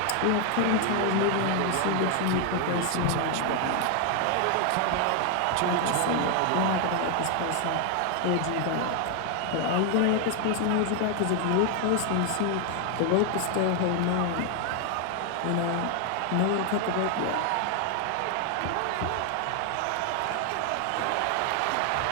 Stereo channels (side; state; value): both; different; correlation 0.00